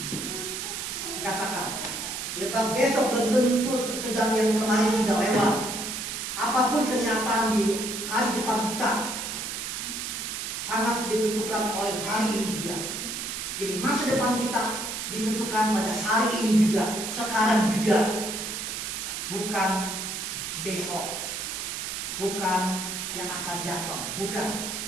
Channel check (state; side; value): noise; right; hiss, 4 dB below the sound